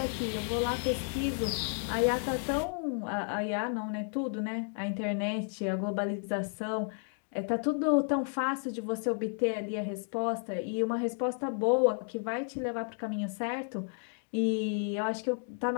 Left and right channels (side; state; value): right; silent; 56 dB below the other